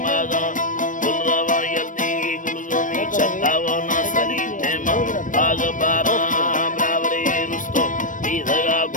गुलरवा यल्दी गुलजोनी चतावना सली तेमा आग बारा ब्रावरे रुस्तो दीधगा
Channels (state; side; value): late; right; 0.38 ms